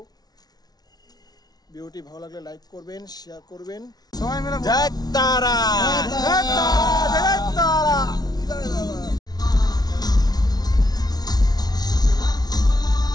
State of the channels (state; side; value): late; right; 0.19 ms